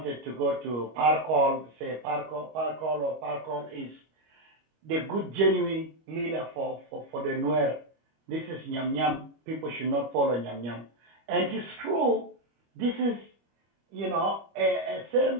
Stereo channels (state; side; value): late; left; 25 ms